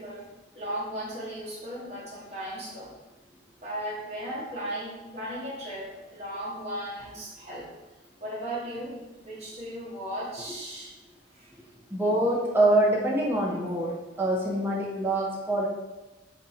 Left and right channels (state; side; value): normal; both; correlation 0.46